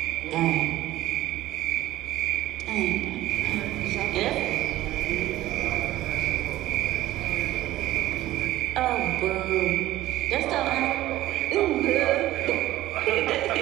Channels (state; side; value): quieter; left; 15.4 dB